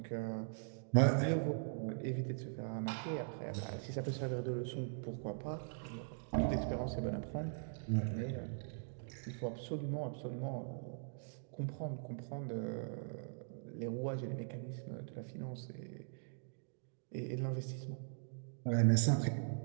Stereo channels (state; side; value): silent; left; digital silence